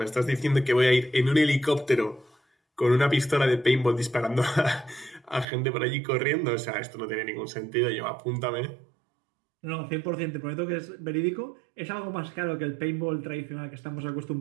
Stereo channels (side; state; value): left; drops out; at 5.5 s